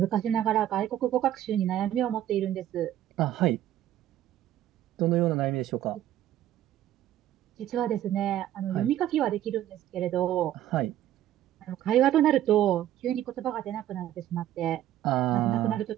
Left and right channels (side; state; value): left; quieter; 12.4 dB